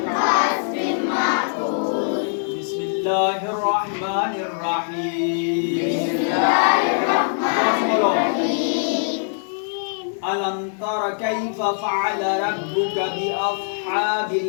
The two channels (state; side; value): silent; right; digital silence